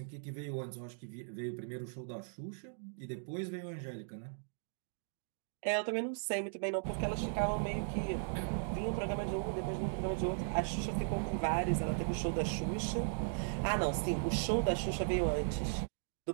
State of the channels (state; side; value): silent; left; digital silence